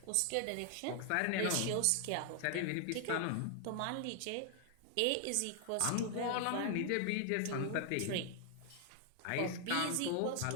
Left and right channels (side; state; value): both; different; correlation 0.00